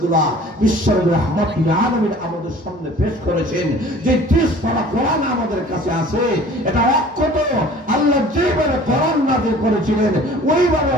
বিশ্বের রাহমাতুল আলামিন আমাদের সামনে পেশ করেছেন, যে 30 পারা কোরআন আমাদের কাছে আছে, এটা অক্ষত আল্লাহ যেভাবে কোরআন নাযিল করেছিলেন ওইভাবে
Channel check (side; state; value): both; normal; correlation 0.48